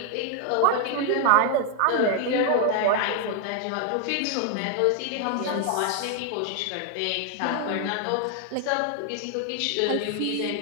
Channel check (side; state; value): both; different; correlation 0.00